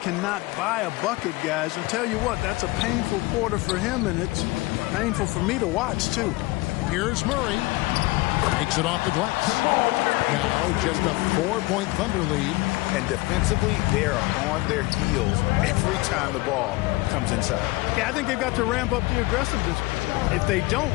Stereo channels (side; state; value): right; quieter; 21.8 dB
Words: cannot buy a bucket, guys. I'll tell you what, that's a painful quarter for him, and it's painful for me to watch, too. Here's Murray. Makes it off the glass. Now just a 4-point Thunder lead. And defensively, they are on their heels every time the ball comes inside. Yeah, I think they've got to ramp up the aggressiveness. If they don't,